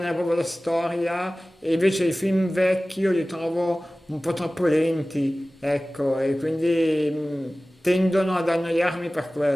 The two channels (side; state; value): both; normal; correlation 0.97